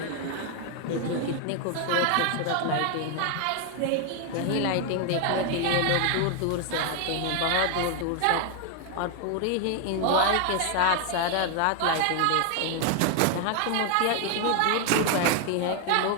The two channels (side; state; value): both; different; correlation 0.01